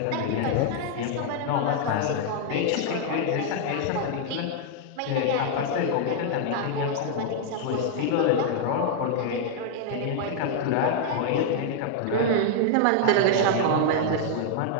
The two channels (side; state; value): both; different; correlation 0.00